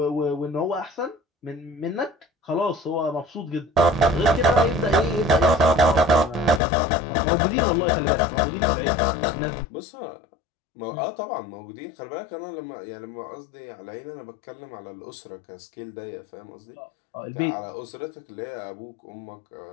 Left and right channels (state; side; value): drops out; right; at 6.6 s